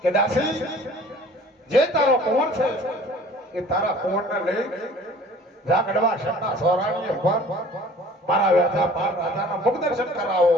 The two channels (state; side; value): normal; both; correlation 0.49